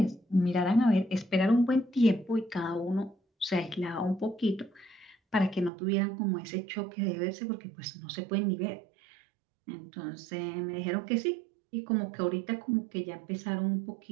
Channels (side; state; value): left; drops out; at 5.7 s